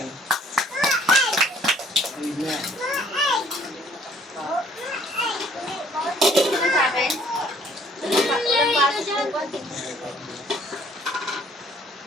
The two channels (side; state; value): both; normal; correlation 0.59